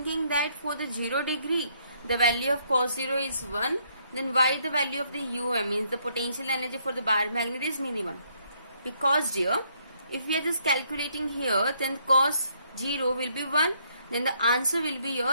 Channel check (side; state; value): both; inverted; correlation -0.70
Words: that for the 0 degree the value of cos 0 is 1, then why the value of the means the potential energy for the bar magnet is minimum? Because dear, if we are just calculating here, then cos 0 will be 1, then the answer will be